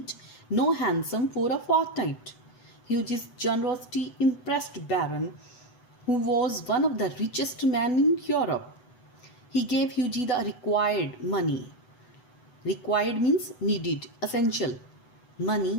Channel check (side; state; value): right; late; 8.0 ms